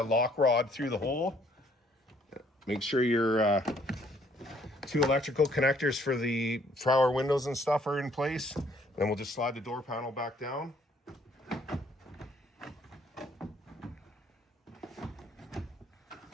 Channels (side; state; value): both; normal; correlation 0.64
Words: rod through the hole. Make sure your 2 electrical connectors for our windows and stuff are in place. Then we'll just slide the door panel back down.